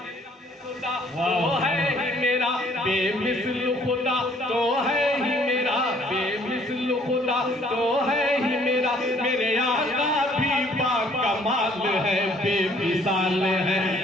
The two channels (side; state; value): both; normal; correlation 0.61